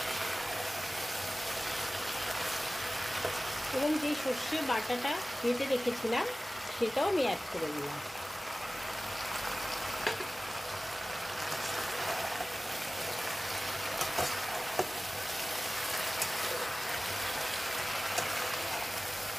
এবং যেই সর্ষে বাটাটা বেটে রেখেছিলাম সেটাও আমি অ্যাড করে দিলাম।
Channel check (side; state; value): both; normal; correlation 0.96